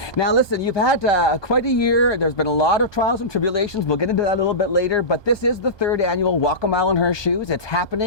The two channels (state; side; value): late; right; 1.2 ms